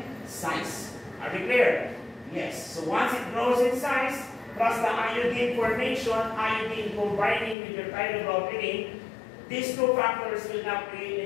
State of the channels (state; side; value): drops out; right; at 7.6 s